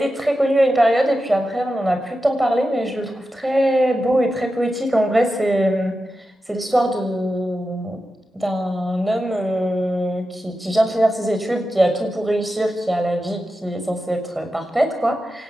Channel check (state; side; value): normal; both; correlation 0.91